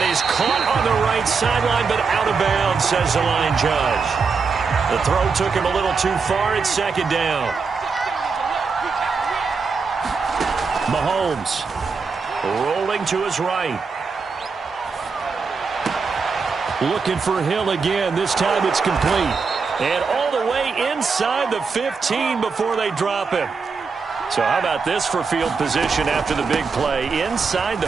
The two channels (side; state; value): left; quieter; 5.0 dB